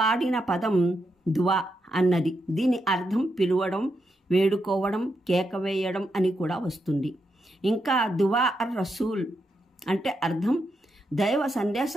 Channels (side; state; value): both; normal; correlation 0.83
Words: పదం దువా అన్నది. దీని అర్థం పిలువడం, వేడుకోవడం, కేక వేయడం అని కూడా వస్తుంది. ఇంకా దువా అర్ రసూల్ అంటే అర్థం దైవ